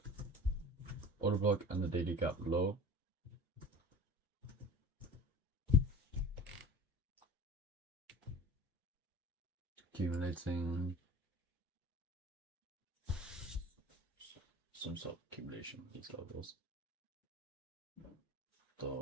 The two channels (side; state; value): both; normal; correlation 0.39